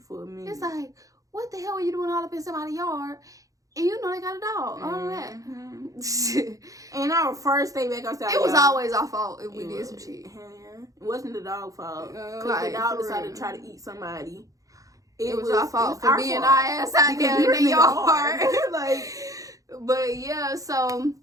for a minute. It's like, what the hell are you doing all up in somebody's yard? And you know they got a dog. All that. And our first day back outside, it was always our fault if we did some shit. Yeah. It wasn't the dog's fault. Because the dog decided to try to eat somebody. It was our fault for being our ass out there in the yard. Like, but yeah, so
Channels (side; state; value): left; late; 0.17 ms